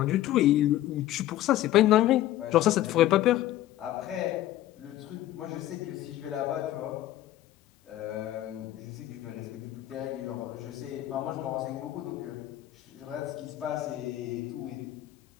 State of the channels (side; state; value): right; quieter; 14.1 dB